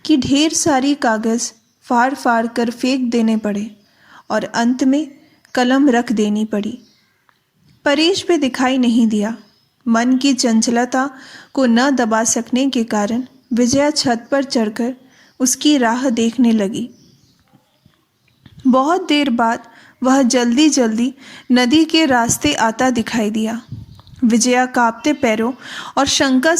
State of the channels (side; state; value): both; identical; correlation 1.00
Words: कि ढेर सारी कागज़ फाड़ फाड़ कर फेंक देने पड़े और अंत में कलम रख देनी पड़ी। परेश भी दिखाई नहीं दिया। मन की चंचलता को न दबा सकने के कारण विजया छत पर चढ़कर उसकी राह देखने लगी। बहुत देर बाद वह जल्दी जल्दी नदी के रास्ते आता दिखाई दिया। विजया कांपते पैरों और शंका